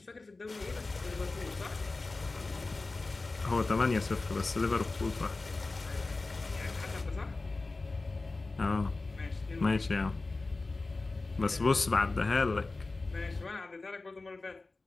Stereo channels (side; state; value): right; quieter; 3.5 dB